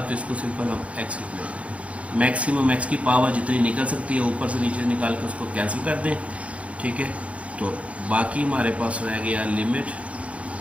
तो इसको सिंपल हम एक्स लिख लेते हैं। मैक्सिमम एक्स की पावर जितनी निकल सकती है ऊपर से नीचे निकाल के उसको कैंसिल कर दें, ठीक है। तो बाकी हमारे पास रह गया लिमिट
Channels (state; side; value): late; left; 0.064 ms